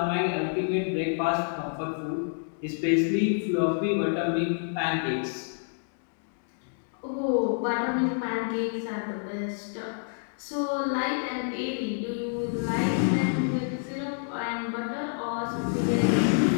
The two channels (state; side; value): silent; right; digital silence